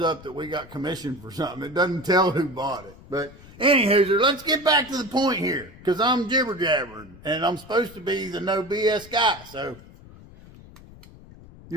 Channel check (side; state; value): left; noise; rumble, 20 dB below the sound